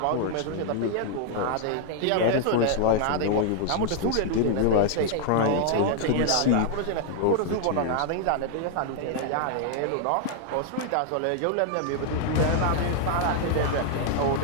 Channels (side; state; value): both; different; correlation 0.00